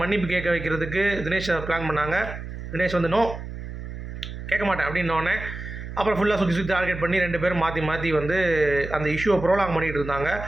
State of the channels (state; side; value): noise; right; hum, 9 dB below the sound